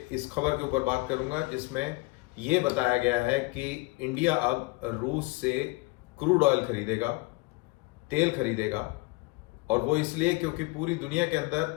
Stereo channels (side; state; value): right; quieter; 24.2 dB